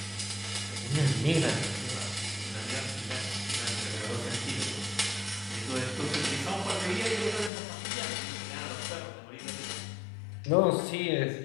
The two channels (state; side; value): drops out; right; at 7.5 s